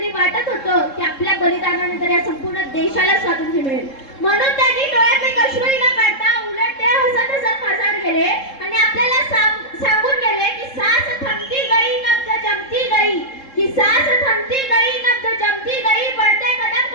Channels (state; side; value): late; right; 3.7 ms